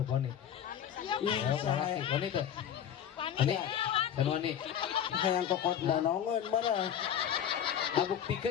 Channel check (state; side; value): quieter; right; 9.3 dB